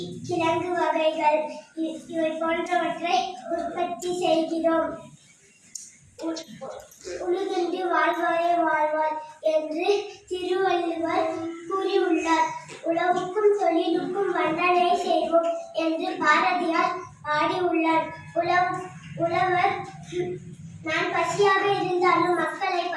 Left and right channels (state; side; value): identical; both; correlation 1.00